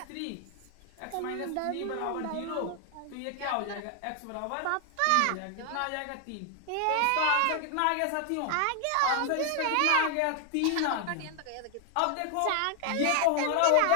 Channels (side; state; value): both; different; correlation 0.00